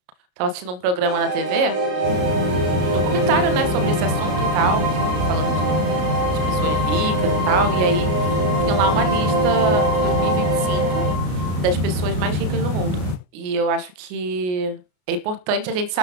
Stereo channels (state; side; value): late; left; 33 ms